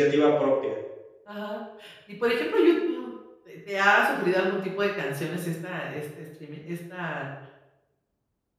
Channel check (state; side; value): identical; both; correlation 1.00